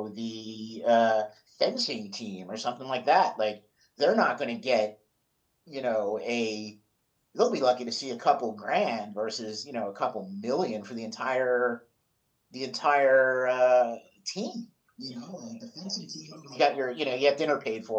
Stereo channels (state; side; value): identical; both; correlation 1.00